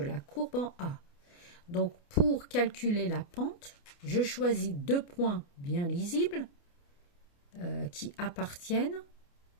courbe en A. Donc, pour calculer la pente, je choisis deux points bien lisibles qui appartiennent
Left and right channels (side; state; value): right; late; 29 ms